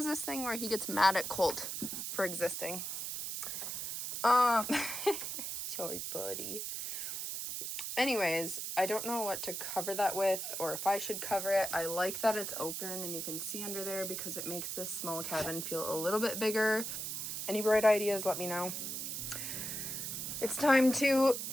this thing where he gets mad at Colt for existing. Sorry, buddy. Anyways, I don't know what to cover that with or if I should cover it. I like that it's open and you can see under there because it makes this small cabin feel a little bit bigger. Any bright ideas, let me know. It's time to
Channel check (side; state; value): right; noise; hiss, 4 dB below the sound